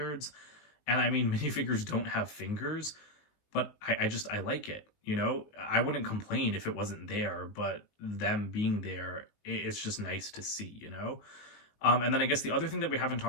And I mean, minifigures don't have fingers, but I like it, you know? I wouldn't complain if it wasn't there, but them being there, it's just nice to see, you know? And then I guess the other thing that we haven't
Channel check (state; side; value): late; right; 19 ms